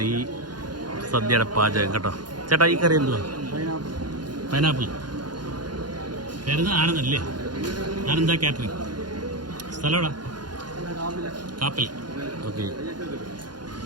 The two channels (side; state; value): left; late; 0.71 ms